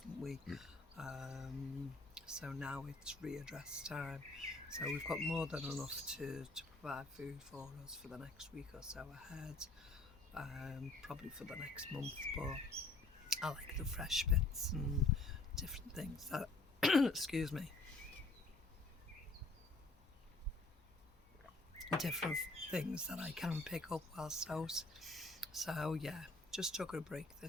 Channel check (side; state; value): right; quieter; 3.2 dB